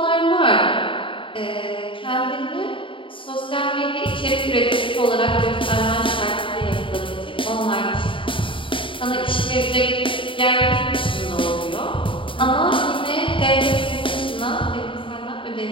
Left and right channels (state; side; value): late; right; 0.25 ms